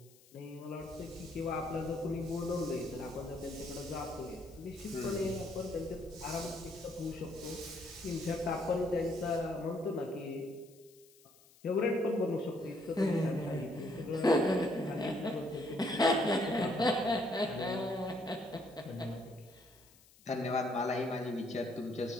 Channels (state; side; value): noise; left; hiss, 26 dB below the sound